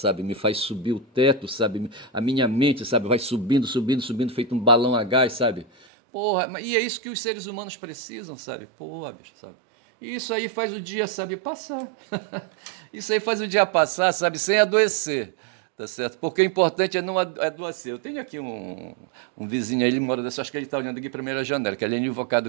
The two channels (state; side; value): drops out; left; at 5.9 s